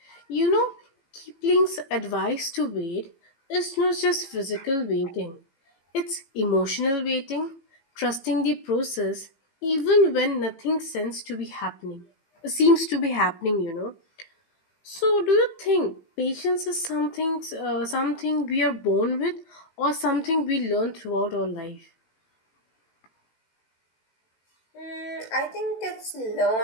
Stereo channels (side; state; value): right; late; 18 ms